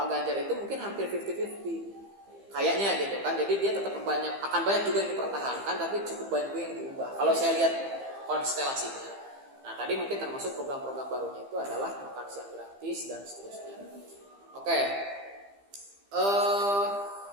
Ganjar itu mungkin hampir 50-50 kayaknya gitu kan. Jadi dia tetap akan banyak juga yang dipertahankan, tapi cukup banyak juga yang diubah. Kalau saya lihat konstelasinya. Nah tadi mungkin termasuk program-program barunya itu adalah makan siang gratis dan seterusnya. Oke.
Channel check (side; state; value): left; late; 15 ms